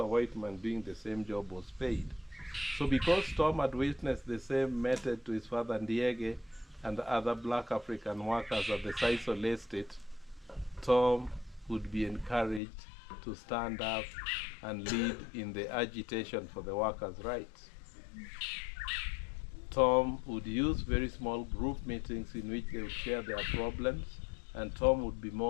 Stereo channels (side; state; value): right; drops out; at 12.6 s